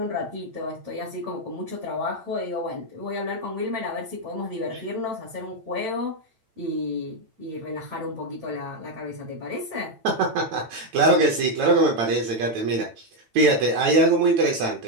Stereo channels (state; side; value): late; left; 9.0 ms